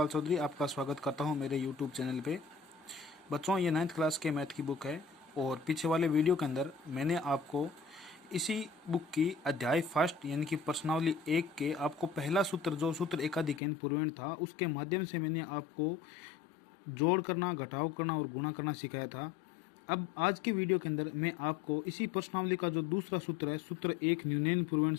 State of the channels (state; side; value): drops out; right; at 13.6 s